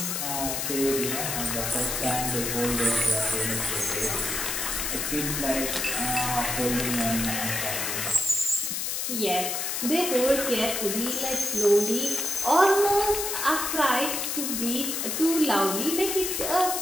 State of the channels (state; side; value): noise; left; hiss, 1 dB below the sound